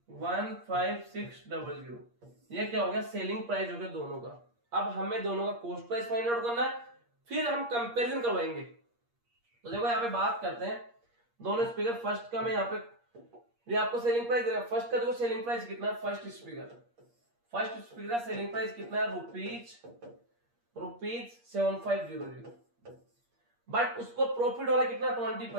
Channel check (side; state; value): left; late; 8.5 ms